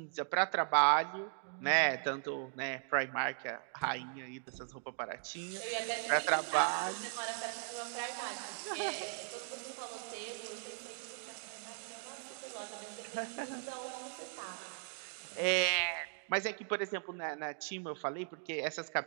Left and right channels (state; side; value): silent; left; 52 dB below the other